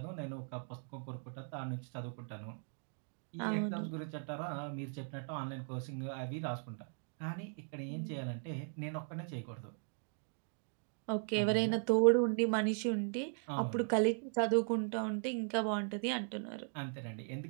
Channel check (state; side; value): silent; left; 52 dB below the other